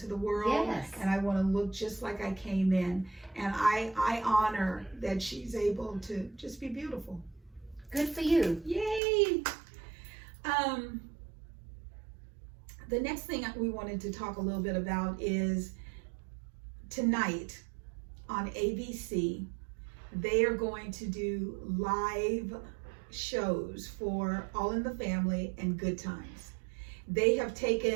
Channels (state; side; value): drops out; left; at 9.0 s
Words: the world. Yes. And I want to look just like I came in. And I honor that she's able to just be beautiful. Good for you. Yay! The next thing we wanted to talk a little bit about is tonight on ABC, they are going to do live shows for All in the Family and Good Times. They have